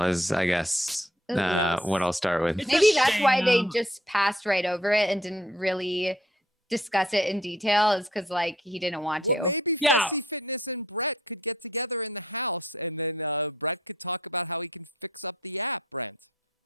is I guess Yes. what I'll start with. Maybe that's why they just passed right over it and didn't really discuss it in detail, is because he didn't want to. Well, maybe Fessy Fitness and Brett could get together in the house, and then Brett could talk about how he can fix up the app, Brent.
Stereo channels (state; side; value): normal; both; correlation 0.63